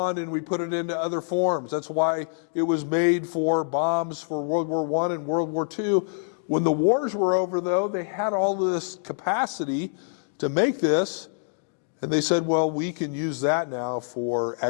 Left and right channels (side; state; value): right; silent; digital silence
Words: and we put it into other forms. That's why it was made for bombs for World War I and World War II. When the wars were over, though, they had all of this capacity to make this, and they said, well, we can use that now for